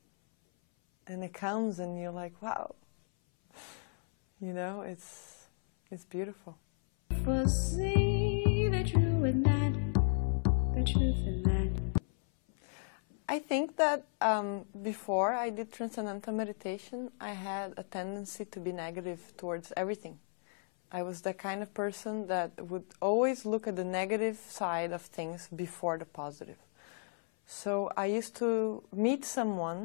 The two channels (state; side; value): silent; right; 55 dB below the other